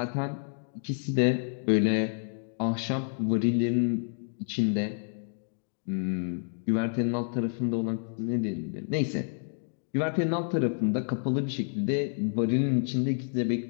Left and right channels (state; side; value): silent; right; digital silence